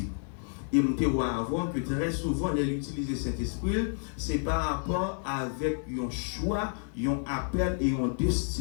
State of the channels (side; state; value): right; silent; 58 dB below the other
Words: Et je vois avoir que très souvent, l'utiliser Saint-Esprit, c'est par rapport avec un choix, un appel et une